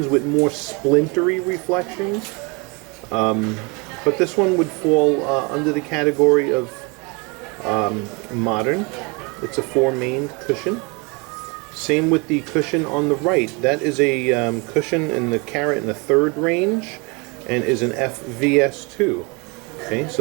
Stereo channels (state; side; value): quieter; left; 29.6 dB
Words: with more splintery reflections, but this one would fall under the category of modern. It's a 4-maned cushion. Same with the cushion on the right. That is a cushion in the 1.3 carat range and is an FVS2. Okay,